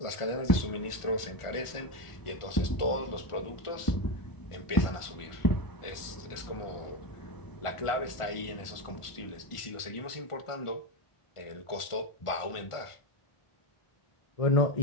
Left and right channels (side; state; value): right; late; 1.4 ms